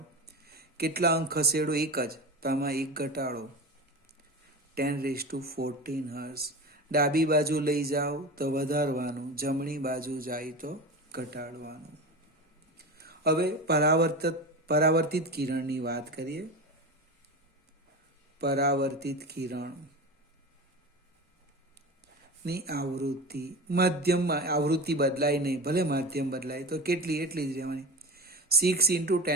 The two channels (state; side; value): normal; both; correlation 0.28